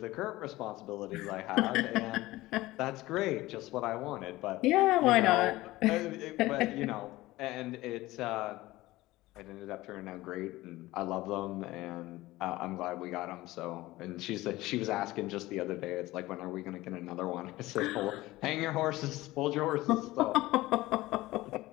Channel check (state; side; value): quieter; right; 18.2 dB